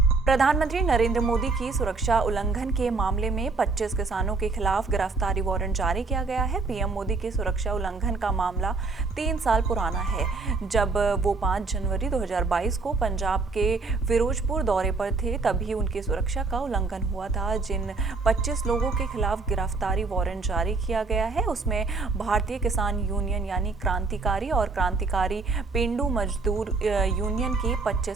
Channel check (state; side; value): quieter; left; 4.1 dB